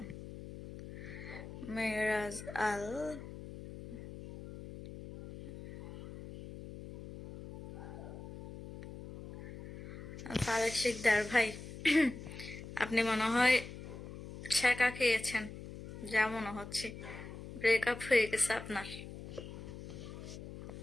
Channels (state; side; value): noise; left; hum, 12 dB below the sound